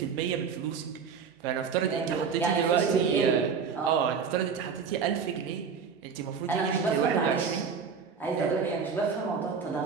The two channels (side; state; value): left; quieter; 6.1 dB